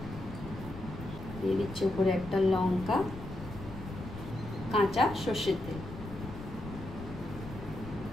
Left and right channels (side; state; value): left; noise; rumble, 11 dB below the sound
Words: দিয়ে দিচ্ছি উপরে একটা লঙ্কা, কাঁচা সর্ষের তেল।